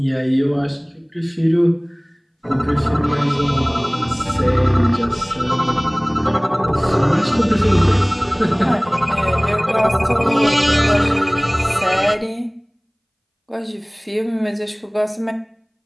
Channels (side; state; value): both; identical; correlation 1.00